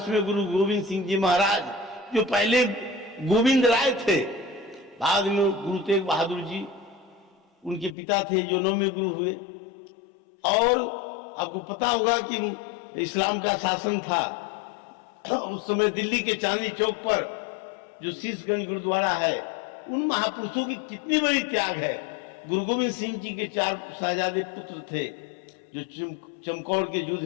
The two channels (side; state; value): right; drops out; at 8.0 s